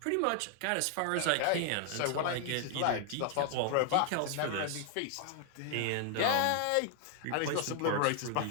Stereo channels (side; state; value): both; different; correlation 0.00